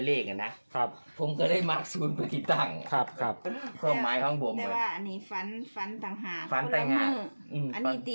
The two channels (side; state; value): both; inverted; correlation -1.00